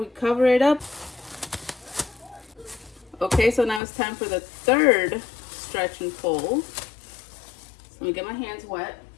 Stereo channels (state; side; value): drops out; right; at 3.8 s